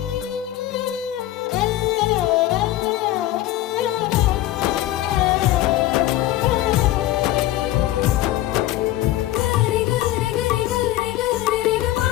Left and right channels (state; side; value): quieter; right; 14.8 dB